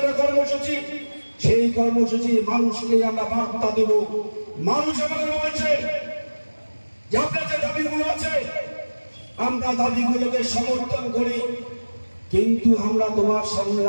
কর্মসূচি, সেই কর্মসূচি মানুষকে আমরা বার্তা দেব। মানুষ আমাদের বলছে যে আপনার যে দাবিগুলো আছে আমরা দাবিগুলোকে সমর্থন করি, কিন্তু আমরা তোমার সামনে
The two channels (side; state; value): both; inverted; correlation -1.00